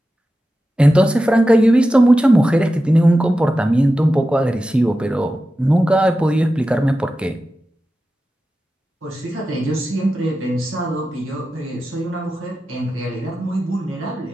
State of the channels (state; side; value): normal; both; correlation 0.93